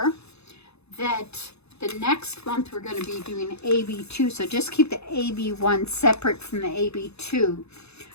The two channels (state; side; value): late; right; 0.80 ms